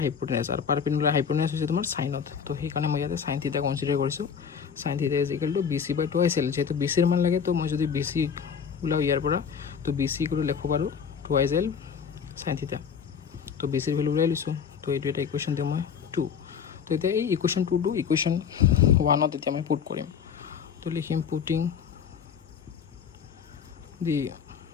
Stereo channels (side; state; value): right; quieter; 7.1 dB